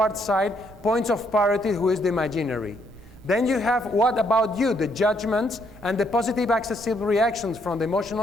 side, points of parity, who is the imaginary. Then you have what about you, the judgments, and the positive accessible reactions from the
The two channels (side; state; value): right; noise; rumble, 21 dB below the sound